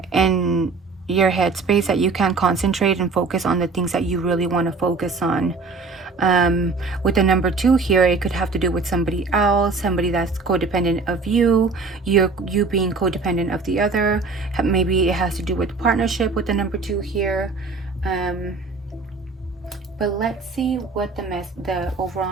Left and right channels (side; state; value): left; quieter; 4.1 dB